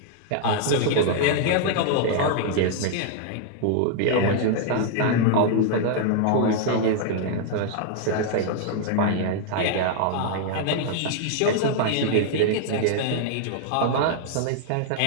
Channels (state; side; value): different; both; correlation 0.00